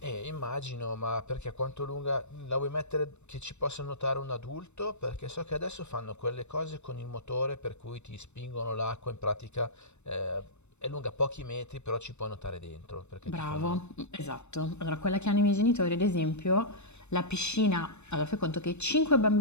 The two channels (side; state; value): right; late; 0.82 ms